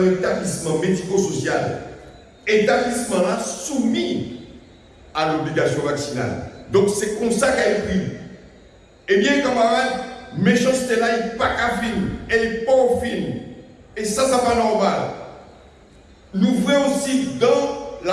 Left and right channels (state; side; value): identical; both; correlation 1.00